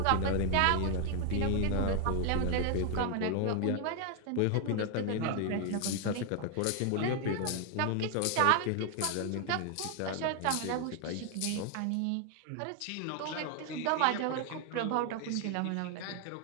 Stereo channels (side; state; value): both; different; correlation 0.00